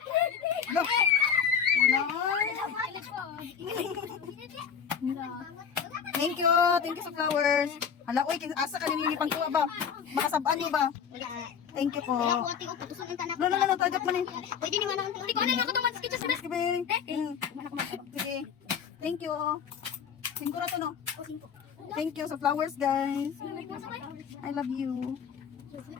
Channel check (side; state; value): right; quieter; 7.3 dB